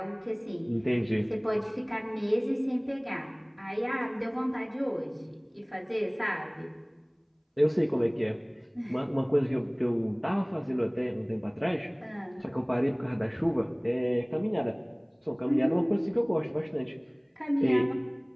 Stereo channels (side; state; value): both; identical; correlation 1.00